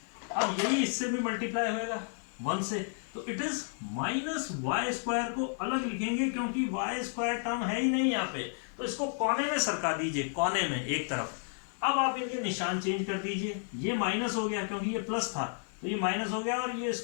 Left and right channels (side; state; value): right; silent; 56 dB below the other